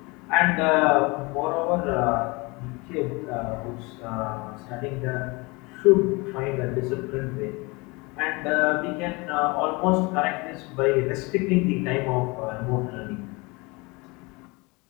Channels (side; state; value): right; quieter; 26.1 dB